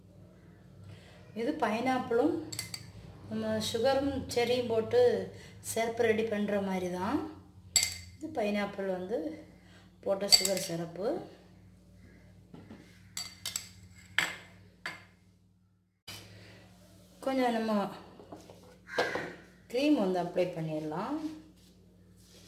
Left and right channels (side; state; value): both; identical; correlation 1.00